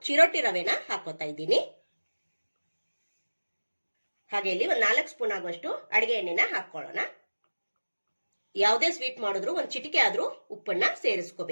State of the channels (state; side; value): inverted; both; correlation -1.00